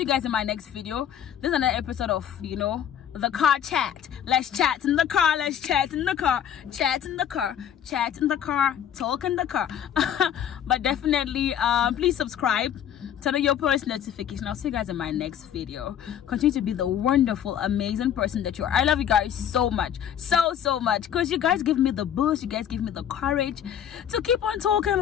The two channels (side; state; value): right; quieter; 9.6 dB